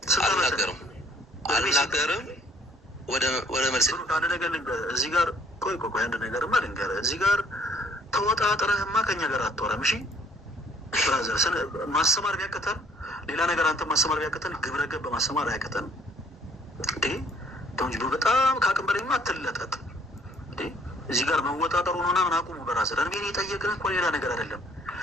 አልናገርም። ወደ መልስ አንድ ነገር ልንገርህ። እዚህ ጋር ቆይ አንድ ነገርማ ልንገርህ። እዚህ ጋር ተወጣጥረህማ ከኛ ጋር አትወራም። እሺ ብራዘር፣ ማስተማር ቢያቅተን ሌላ ነገር አንተ ማስተማር ቢያቅተን ግብረ ገብ ማስተማር አያቅተንም እንዴ? ተውንጅ በጣም ከአቅም በላይማ አትለጠጥ እንዴ? እዚህ ጋር መወጣጠሩ ነውና ምን አቁሙ ብራዘር። እኔ የጠየቅን እኮ ሌላ ነገር አይደለም።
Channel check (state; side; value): normal; both; correlation 0.60